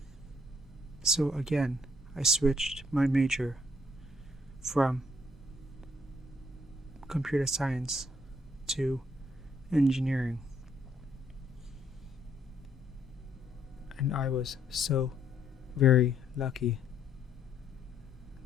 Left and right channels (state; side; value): normal; both; correlation 0.69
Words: So again, I switched my major from computer science to engineering. And I was so very lucky